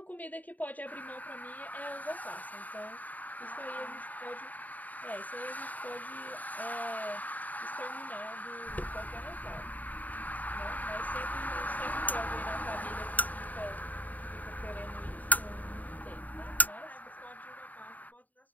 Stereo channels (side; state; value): right; late; 0.078 ms